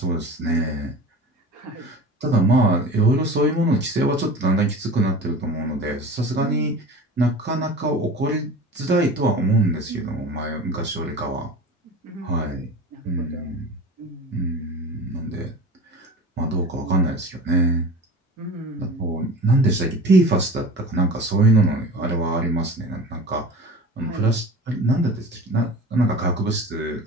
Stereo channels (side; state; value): both; normal; correlation 0.36